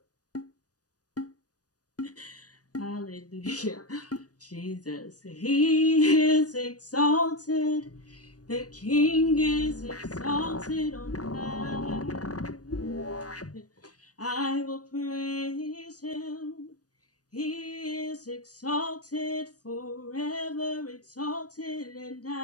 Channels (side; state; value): right; late; 0.68 ms